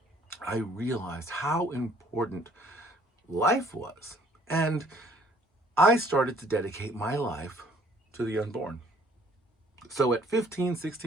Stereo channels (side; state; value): both; normal; correlation 0.60